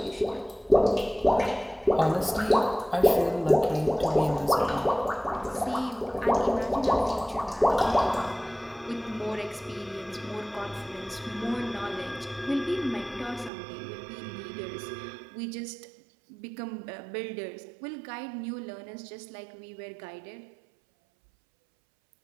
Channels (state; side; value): drops out; left; at 13.5 s